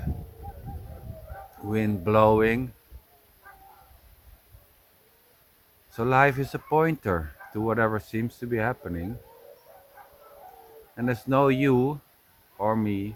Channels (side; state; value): both; identical; correlation 1.00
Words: wind blowing. So life is a pointer to whatever seems to be happening. And there's no you or me